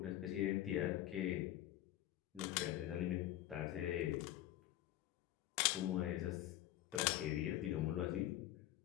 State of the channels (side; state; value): right; quieter; 13.9 dB